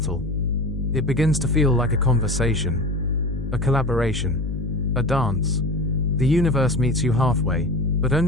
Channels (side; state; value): left; noise; hum, 4 dB below the sound